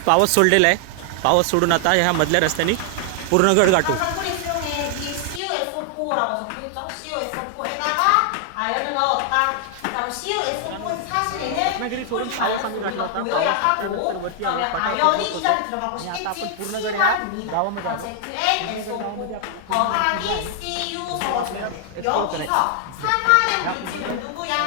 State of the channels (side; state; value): both; different; correlation 0.00